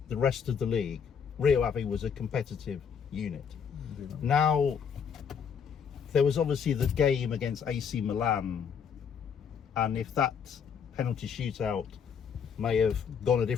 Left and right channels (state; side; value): quieter; right; 7.0 dB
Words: the rest of the league, Rio Ave was a competitive unit. Yeah. Now, there was obviously the game against AC Milan, and if that penalty shootout may have gone a